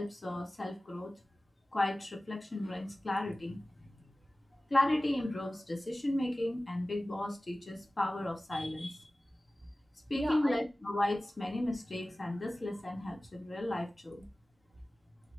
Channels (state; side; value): normal; both; correlation 0.97